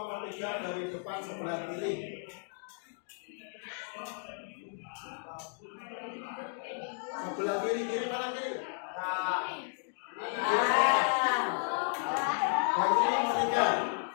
3 dari depan sebelah kiri. Sebelah kiri, kiri mana kiri? Bangku nomor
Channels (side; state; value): right; silent; 55 dB below the other